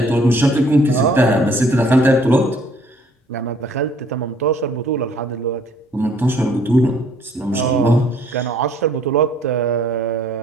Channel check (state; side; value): normal; both; correlation 0.60